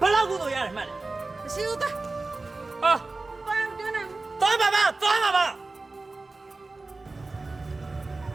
ဘယ်လောက်ကုသိုလ်ရတယ်မှတ်တယ် မရှိဘူးသား ဟာ ဘာမှမပြောနိုင်ဘူး သွားပါသွားပါ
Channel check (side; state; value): left; quieter; 3.4 dB